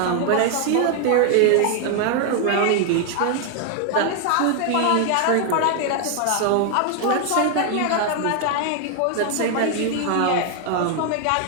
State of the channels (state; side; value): different; both; correlation 0.00